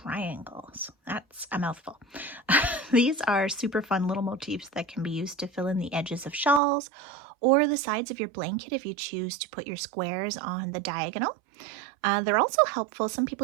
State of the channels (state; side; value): drops out; left; at 6.6 s